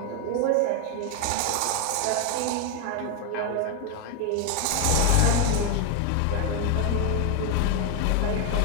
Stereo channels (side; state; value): both; different; correlation 0.00